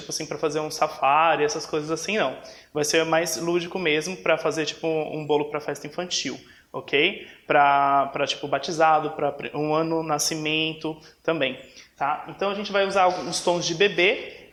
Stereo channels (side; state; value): both; identical; correlation 1.00